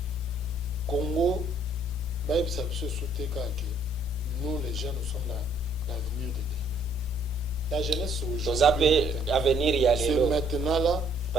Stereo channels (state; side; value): normal; both; correlation 0.64